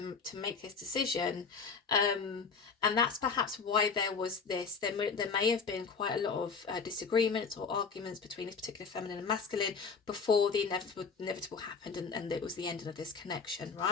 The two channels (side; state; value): right; quieter; 5.3 dB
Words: make this decision, and that's perhaps why there was this. There may have been quite a lot of disagreements or arguments between this particular feminine and masculine before the inevitable happened, and it was the ending of this connection,